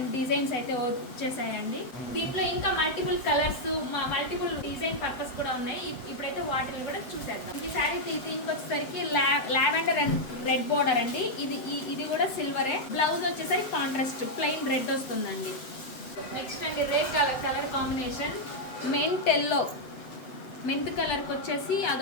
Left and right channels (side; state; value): right; late; 7.8 ms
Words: డిజైన్స్ అయితే వచ్చేసాయండి. దీంట్లో ఇంకా multiple colours, multiple design purpose కూడా ఉన్నాయి. ఇప్పుడైతే వాటిని కూడా చూసేద్దాం. ఈ శారీ దీనికి వచ్చేసరికి లావెండర్ అండ్ రెడ్ బార్డర్ అండి. ఇది కూడా సిల్వరే. బ్లౌజ్ వచ్చేసరికి కాంట్రాస్ట్ ప్లెయిన్ రెడ్ వస్తుందండి. నెక్స్ట్ అండి రెడ్ కలర్ కాంబినేషన్ మెంత్ కలర్కి వచ్చేసి